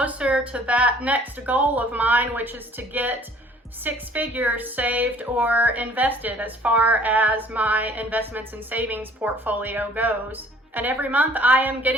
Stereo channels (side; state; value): both; normal; correlation 0.55